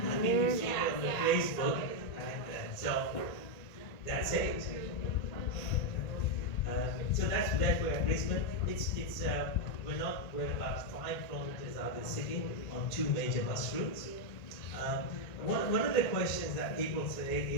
think you see it on the Facebook, and so that's it. So that's where Brisbane. We're about 5 kilometers out of the city on 2 major bus routes. One of the questions that people say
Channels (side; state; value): right; late; 1.9 ms